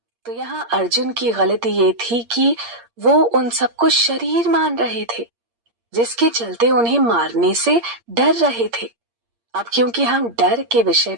तो यहाँ अर्जुन की गलती ये थी कि वो उन सबको शरीर मान रहे थे, जिसके चलते उन्हें मारने से डर रहे थे। अब क्योंकि हम डर के विषय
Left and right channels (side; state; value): left; late; 8.6 ms